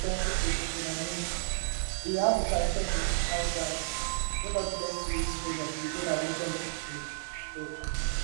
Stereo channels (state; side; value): silent; left; digital silence